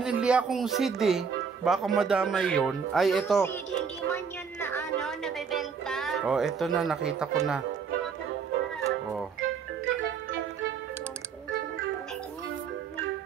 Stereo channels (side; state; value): left; quieter; 6.1 dB